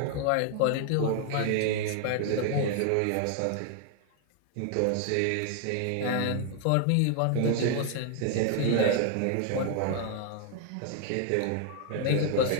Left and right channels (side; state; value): both; different; correlation 0.00